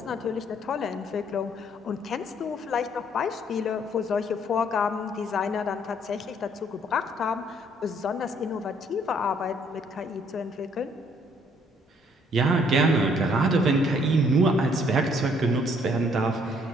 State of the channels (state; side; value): normal; both; correlation 0.65